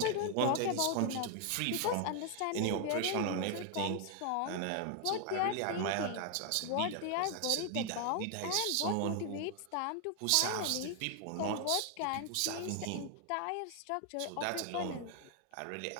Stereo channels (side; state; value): both; different; correlation 0.00